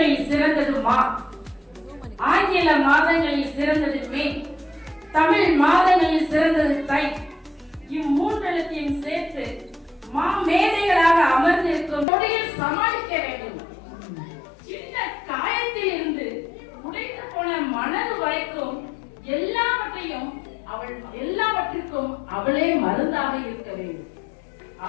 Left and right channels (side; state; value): right; drops out; at 12.1 s